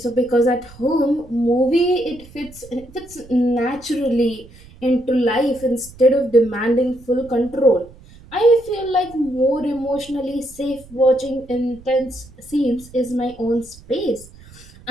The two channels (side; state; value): right; noise; rumble, 22 dB below the sound